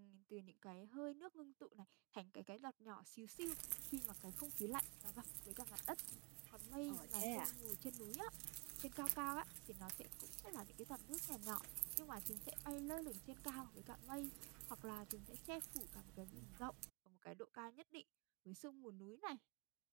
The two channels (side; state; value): left; quieter; 29.5 dB